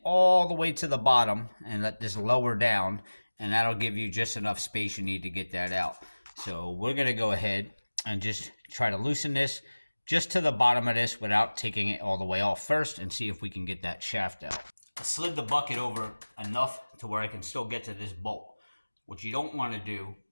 all the way to the bottom and let this lower down, and that'll give you just enough space you need to get that out. So we're going to go ahead and just try to loosen this just to the bottom of this without taking it all the way off first, and see if we can get that shaft out. I slid the bucket over enough to where I can still get to this bolt. What you don't want to do,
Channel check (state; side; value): inverted; both; correlation -1.00